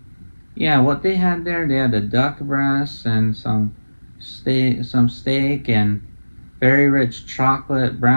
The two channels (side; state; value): both; inverted; correlation -1.00